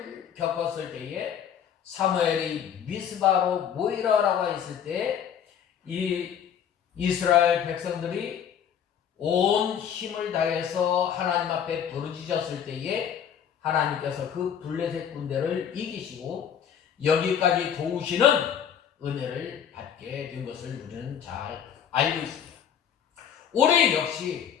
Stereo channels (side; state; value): right; quieter; 8.5 dB